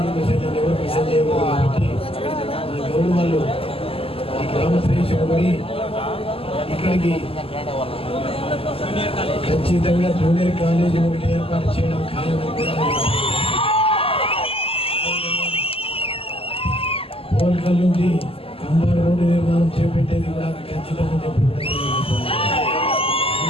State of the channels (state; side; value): late; right; 0.27 ms